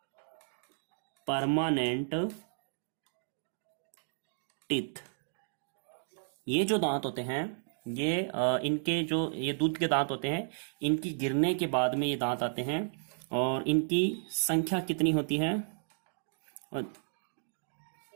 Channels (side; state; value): left; silent; digital silence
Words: परमानेंट टीथ। ये जो दांत होते हैं, ये इनके जो ये दूध के दांत होते हैं, इनकी गिरने के बाद में ये दांत आते हैं, और इनकी संख्या कितनी होती है?